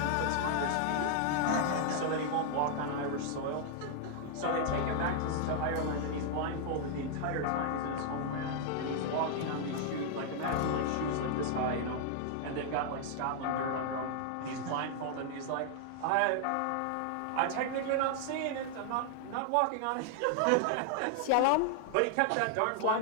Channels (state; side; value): different; both; correlation 0.00